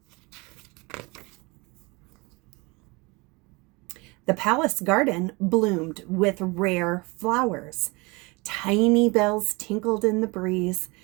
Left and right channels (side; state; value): left; quieter; 26.2 dB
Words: The palace garden bloomed with rare flowers. Tiny bells tinkled in the breeze.